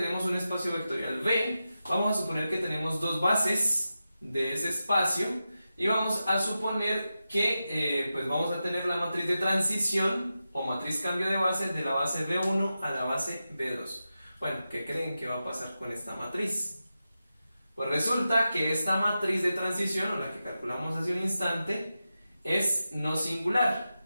un espacio vectorial V, vamos a suponer que tenemos dos bases de ese espacio y vamos a suponer que pues vamos a tener la matriz de transición o matriz cambio de base de la base B1 a la base B2. Bueno, ¿qué creen que va a pasar con esta matriz? Pues resulta que esta matriz de transición, o la que calculamos hace un instante, es no singular,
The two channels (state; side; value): inverted; both; correlation -0.91